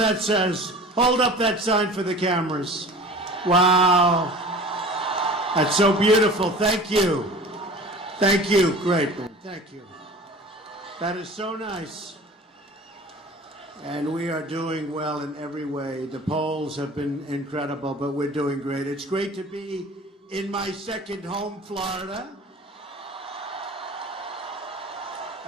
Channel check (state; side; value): normal; both; correlation 0.41